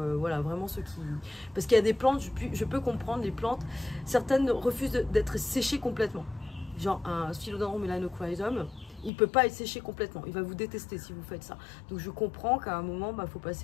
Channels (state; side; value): drops out; right; at 9.1 s